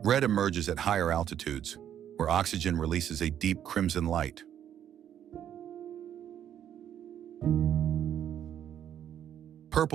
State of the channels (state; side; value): quieter; left; 10.0 dB